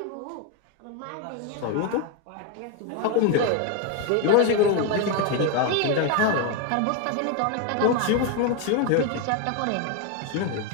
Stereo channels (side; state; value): both; different; correlation 0.02